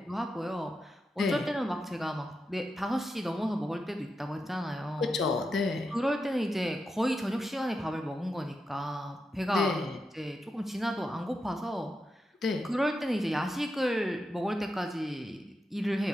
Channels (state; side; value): normal; both; correlation 0.88